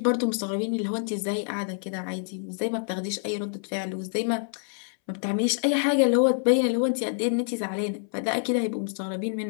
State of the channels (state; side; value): silent; right; 60 dB below the other